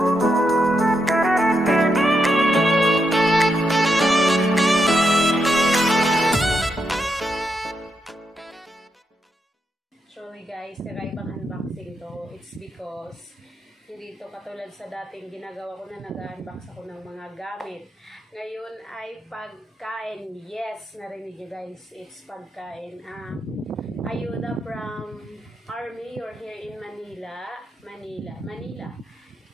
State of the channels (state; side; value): normal; both; correlation 0.82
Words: Sorry guys, nakaibang unboxing to. It's because hindi to katulad sa dating ginagawa ko na nag-unbox ako ng mga gamit. Ngayon ay pagkain. Yes, narinig nyo guys. It's pagkain. Ayuda from Army or here in Manila. Manila.